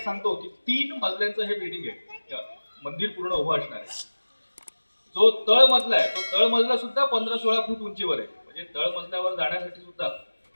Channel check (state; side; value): inverted; both; correlation -1.00